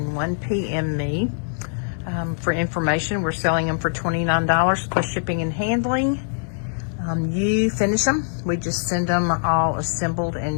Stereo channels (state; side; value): silent; right; digital silence